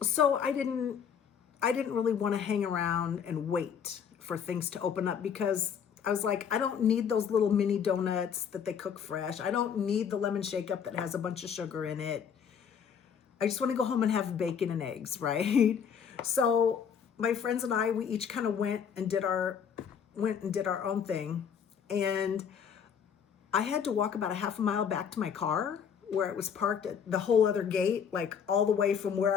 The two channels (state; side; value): quieter; right; 7.4 dB